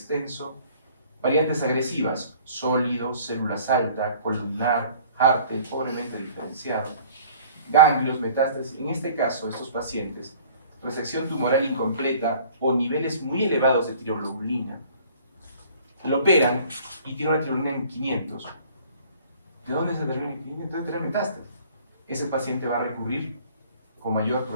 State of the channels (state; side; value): inverted; both; correlation -0.51